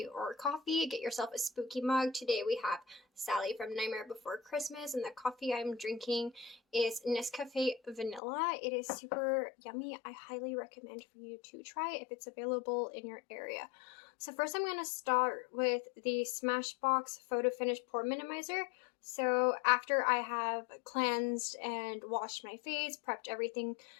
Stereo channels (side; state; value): right; drops out; at 8.2 s